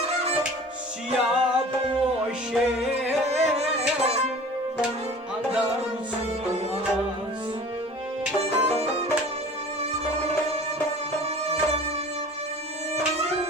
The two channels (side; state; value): both; normal; correlation 0.43